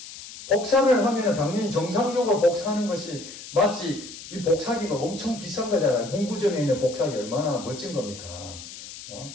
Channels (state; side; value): noise; left; hiss, 14 dB below the sound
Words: 복사를 하면 당연히 정상적으로 복사하는 것이 마치 이 복사기가 엄청 비싼 거잖아요. 문구점에 있는 복사기 얼마나 멋진 겁니까?